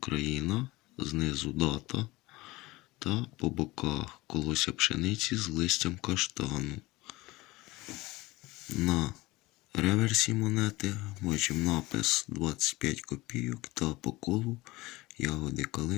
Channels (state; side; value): quieter; right; 20.7 dB